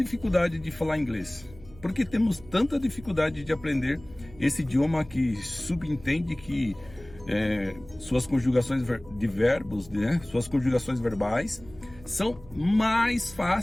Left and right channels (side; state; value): right; noise; hum, 21 dB below the sound